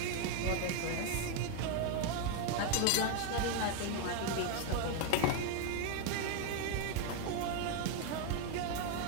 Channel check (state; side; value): different; both; correlation 0.01